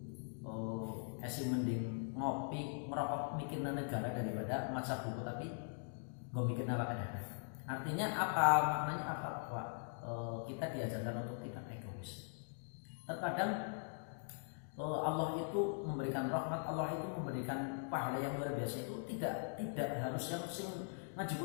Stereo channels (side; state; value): right; silent; digital silence